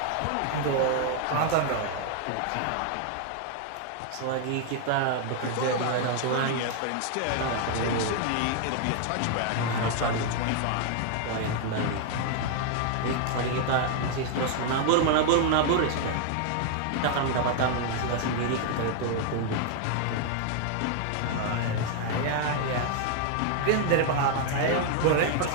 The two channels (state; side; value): different; both; correlation 0.00